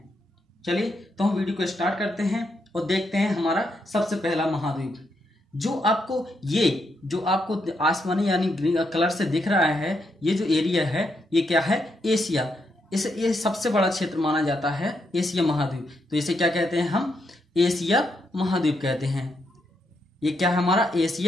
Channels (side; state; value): both; normal; correlation 0.79